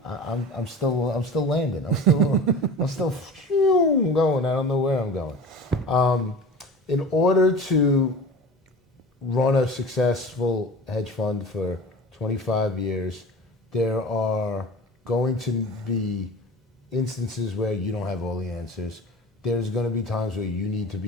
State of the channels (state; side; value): normal; both; correlation 0.36